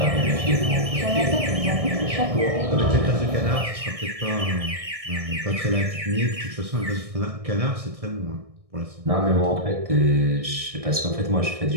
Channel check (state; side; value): late; left; 1.6 ms